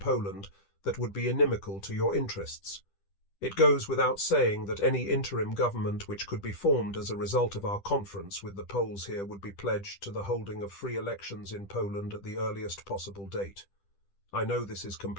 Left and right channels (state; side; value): late; right; 10 ms